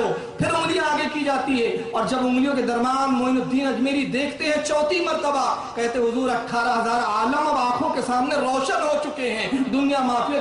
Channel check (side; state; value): both; identical; correlation 1.00